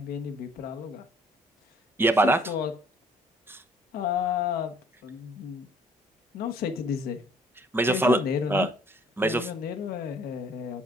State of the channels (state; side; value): normal; both; correlation 0.59